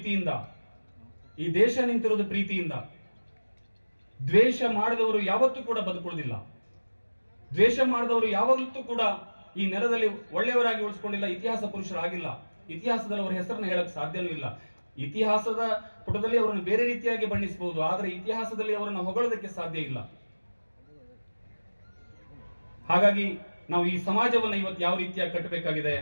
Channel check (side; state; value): both; inverted; correlation -1.00